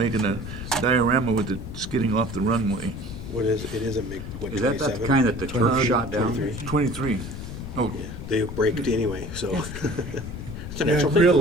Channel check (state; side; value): noise; left; rumble, 9 dB below the sound